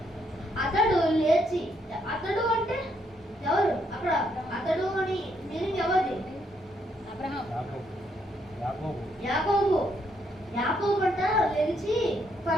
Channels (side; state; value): both; normal; correlation 0.74